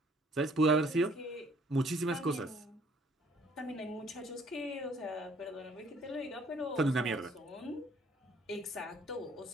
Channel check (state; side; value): normal; both; correlation 0.60